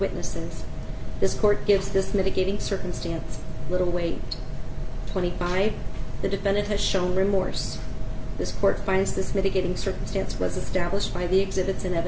This court gives this mitigating circumstance little weight. 25. The defendant has shown remorse. This court finds this mitigating circumstance was established by the exhibits and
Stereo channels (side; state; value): both; identical; correlation 1.00